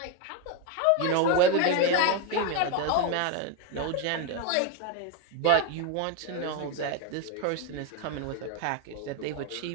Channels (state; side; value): different; both; correlation 0.02